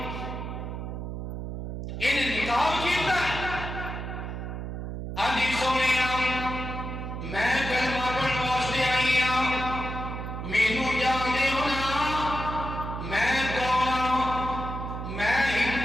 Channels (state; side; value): noise; right; hum, 6 dB below the sound